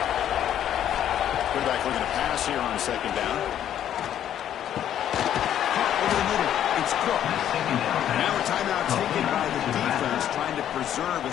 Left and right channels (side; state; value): right; quieter; 10.6 dB